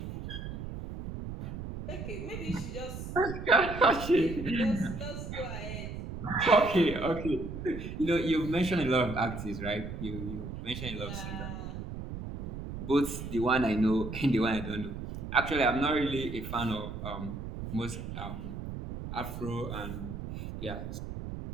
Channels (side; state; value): right; noise; rumble, 8 dB below the sound